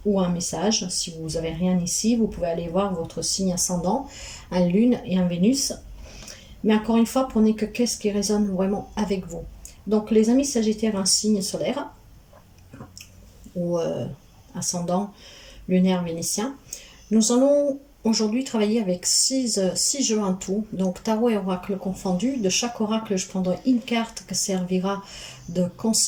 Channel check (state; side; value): identical; both; correlation 1.00